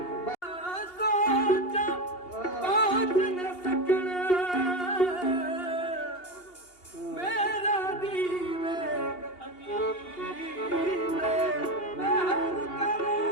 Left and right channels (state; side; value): late; right; 2.8 ms